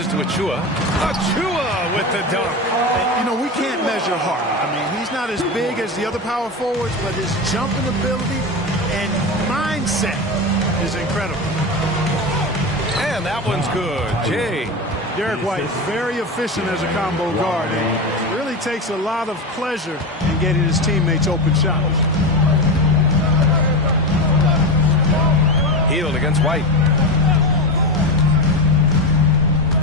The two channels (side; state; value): both; normal; correlation 0.19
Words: to Achua. Achua with the dunk. And, you know, we can't measure heart. I mean, he's not as big as the other power forwards, but his jumping ability and mindset is incredible. And that one's good. Jay. Derek White is very efficient as a combo guard and really takes a lot of pleasure in getting his teammates open shots. Hield against White.